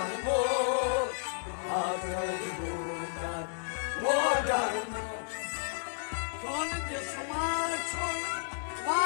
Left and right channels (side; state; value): right; silent; 56 dB below the other